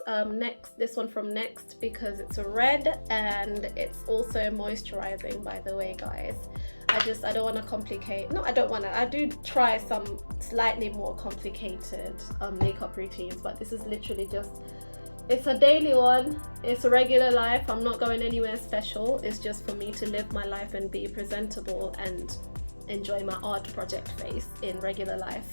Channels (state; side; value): inverted; both; correlation -1.00